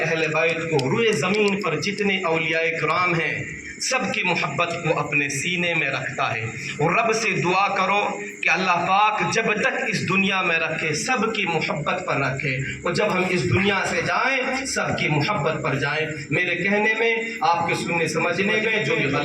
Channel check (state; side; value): identical; both; correlation 1.00